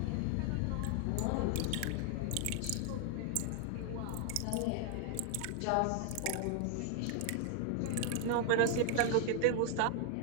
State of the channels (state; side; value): different; both; correlation 0.00